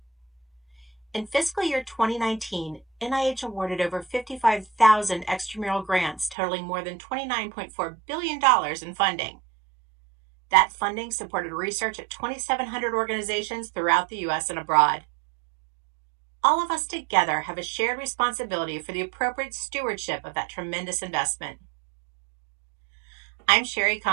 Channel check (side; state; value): left; drops out; at 6.4 s